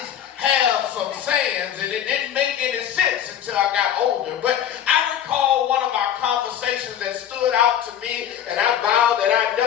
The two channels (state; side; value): quieter; right; 10.0 dB